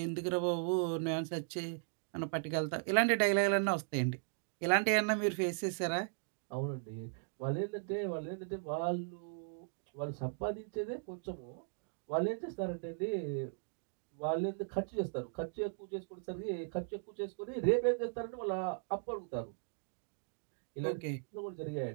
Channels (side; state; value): left; silent; digital silence